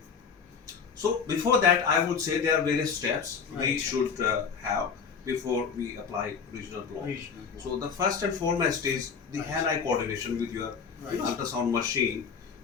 So before that, I would say there are various steps we Right. should have before we apply regional block. Regional block. So the first and foremost is the Right. hand-eye coordination with your Right. ultrasound machine.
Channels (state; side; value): quieter; right; 6.1 dB